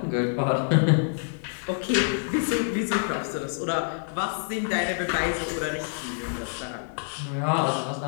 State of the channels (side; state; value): right; silent; digital silence